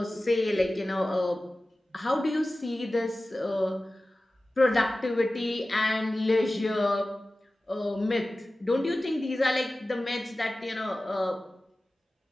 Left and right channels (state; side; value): normal; both; correlation 0.96